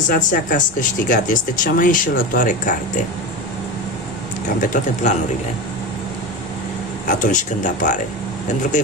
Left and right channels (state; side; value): normal; both; correlation 0.23